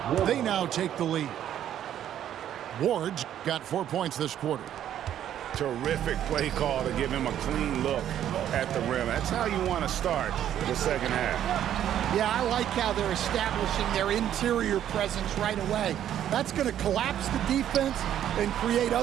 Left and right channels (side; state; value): left; quieter; 10.8 dB